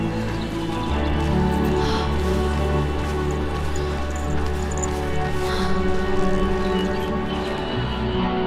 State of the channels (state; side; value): identical; both; correlation 1.00